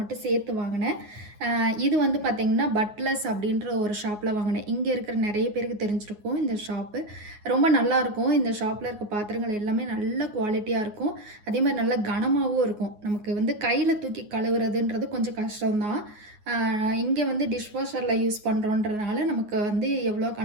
மட்டும் சேர்த்து வாங்கினேன். இது வந்து பார்த்திங்கன்னா பட்லஸ் அப்படின்ற ஒரு ஷாப்பில் வாங்கினேன். இங்கே இருக்கிற நிறைய பேருக்கு தெரிஞ்சிருக்கும் இந்த ஷாப்பு. ரொம்ப நல்லாயிருக்கும். இந்த ஷாப்பில் இருக்க பாத்திரங்கள் எல்லாமே நல்ல குவாலிட்டியாக இருக்கும். அதே மாதிரி நல்ல கனமாகவும் இருக்கும். நமக்கு வந்து கையில் தூக்கி கழுவுறதுன்றது கொஞ்சம் கஷ்டம்தான். இங்கே வந்து டிஷ்வாஷரில் யூஸ் பண்ணுறோன்றதுனால நமக்கு வந்து எவ்வளோ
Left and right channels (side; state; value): left; late; 9.5 ms